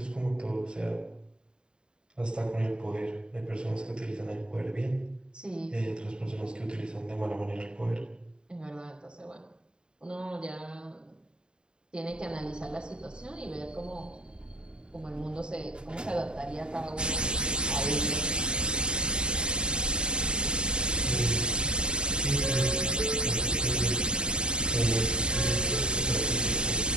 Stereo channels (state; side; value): late; left; 0.050 ms